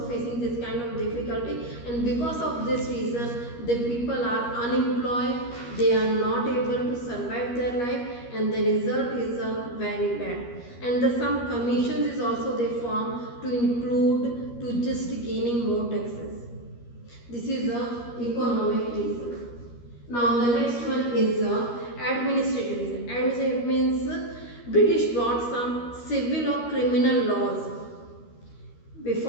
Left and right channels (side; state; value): right; late; 13 ms